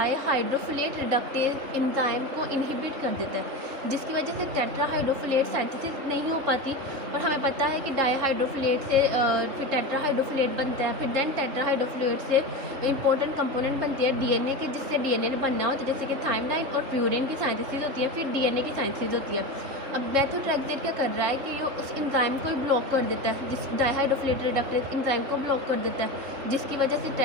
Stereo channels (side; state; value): left; late; 3.7 ms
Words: रिडक्टेज एंजाइम को इनहिबिट कर देता है, जिसकी वजह से टेट्राहाइड्रोफोलेट सिंथेसिस नहीं हो पाती। और हमें पता है कि डाईहाइड्रोफोलेट से फिर टेट्राहाइड्रोफोलेट बनता है, फिर देन टेट्राहाइड्रोफोलेट से इंपॉर्टेंट कंपोनेंट बनती है डीएनए के, जिससे डीएनए बनना होता है, जैसे कि थायमाइन और प्यूरिन की सिंथेसिस होती है, फिर डीएनए की सिंथेसिस होती है। अब मेथोट्रेक्सेट क्या कर रहा है कि ये उस एंजाइम को ही ब्लॉक कर देता है, जिस डाईहाइड्रोफोलेट रिडक्टेज एंजाइम को ब्लॉक कर देता है, जिसकी वजह से